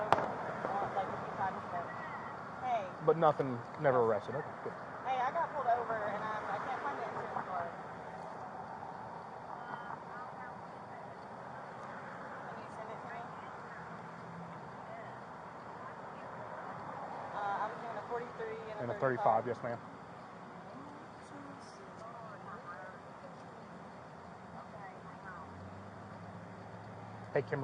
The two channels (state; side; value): identical; both; correlation 1.00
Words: like a few times, but hey. But nothing, never arrested. Okay, good. Hey, I got pulled over and I can't find the insurance card. Can you send it to 43 And a 35, yes, ma'am. Hey,